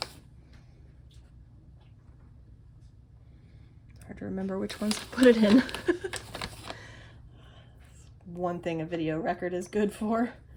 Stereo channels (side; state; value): both; identical; correlation 1.00